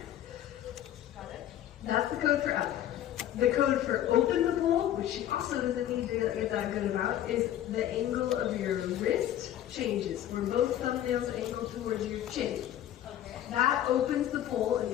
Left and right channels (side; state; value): right; quieter; 11.8 dB